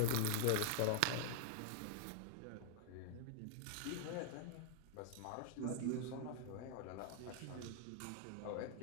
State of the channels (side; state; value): both; different; correlation -0.01